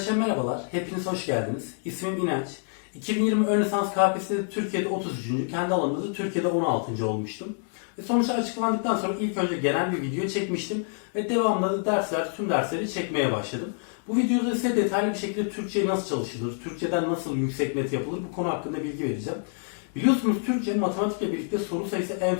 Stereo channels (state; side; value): silent; right; 60 dB below the other